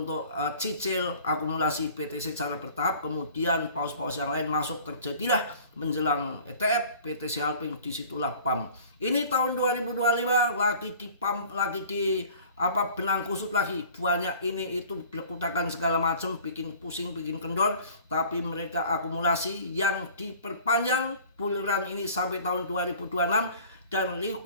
cicil akumulasi BTC secara bertahap, kemudian paus-paus yang lain masuk, terjadilah menjelang ETF BTC Halving, disitulah pam. Ini tahun 2025 lagi di pam, lagi di benang kusut lagi, buahnya ini itu berkutakan segala macam, bikin pusing, bikin kendor, tapi mereka akumulasi yang diperpanjang bull run ini sampai tahun 2026. Dan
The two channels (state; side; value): inverted; both; correlation -0.47